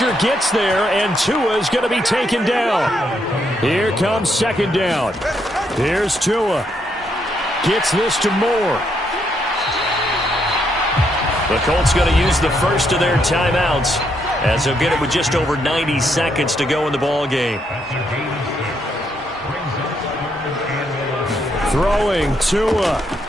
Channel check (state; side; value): normal; both; correlation 0.76